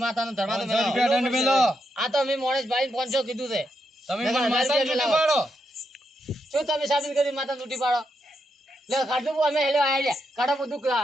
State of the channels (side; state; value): both; normal; correlation 0.82